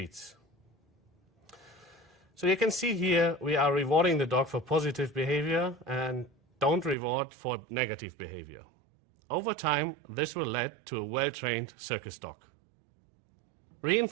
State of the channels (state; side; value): drops out; left; at 7.0 s